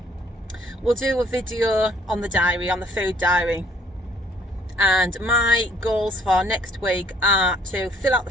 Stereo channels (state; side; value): normal; both; correlation 0.61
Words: we'll do a video on the diary, on the food diary. And my goals for next week are to fill out the